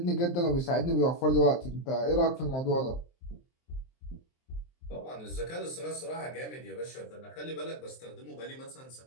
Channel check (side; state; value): right; late; 23 ms